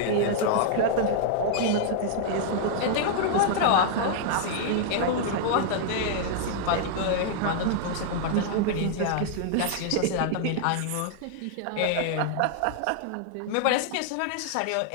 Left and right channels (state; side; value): different; both; correlation -0.01